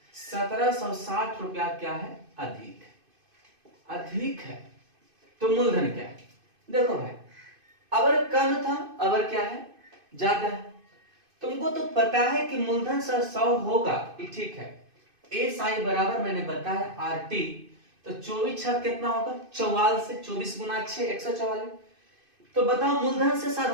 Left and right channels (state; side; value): late; left; 2.5 ms